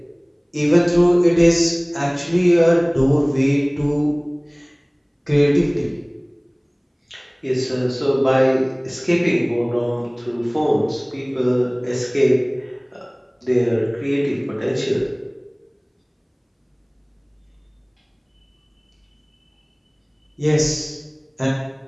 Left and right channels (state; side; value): identical; both; correlation 1.00